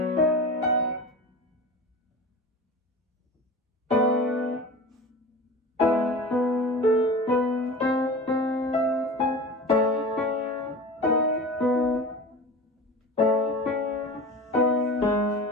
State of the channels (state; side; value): normal; both; correlation 0.33